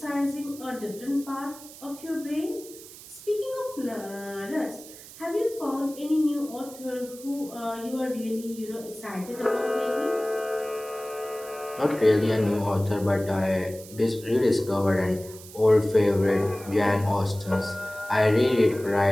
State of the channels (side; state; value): right; noise; hiss, 17 dB below the sound